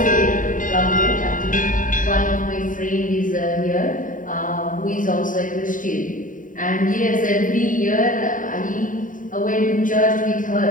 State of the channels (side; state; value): right; late; 0.39 ms